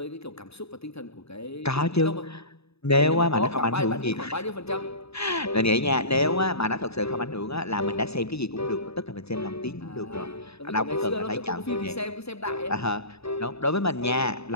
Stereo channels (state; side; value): late; right; 0.79 ms